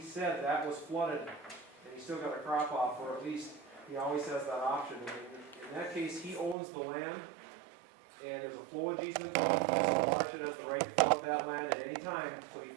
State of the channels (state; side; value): drops out; left; at 6.6 s